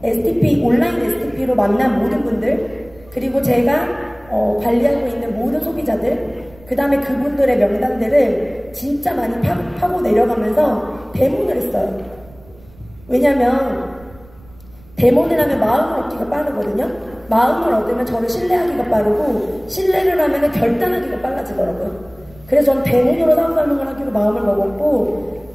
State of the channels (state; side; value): noise; right; rumble, 24 dB below the sound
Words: STP, 온라인 STP로 만난 모든 분들, 그리고 제가 관리하고 있는 모든 소비자들, 그 다음에 그분들의 명단들을 진짜 많이 파고 내려가면서 데몬을 했어요. 왜냐면 데몬을 하면 마음을 얻기가 빠르거든요. 마음을 얻으면 저를 신뢰하기가 빠르고, 신뢰를 하면 결단하기가 빨라지더라고요. 그래서 전 데몬으로 사업 설명을 하기로 마음을 먹었고